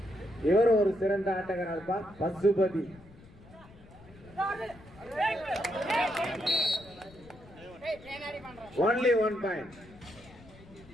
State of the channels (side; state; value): left; noise; rumble, 22 dB below the sound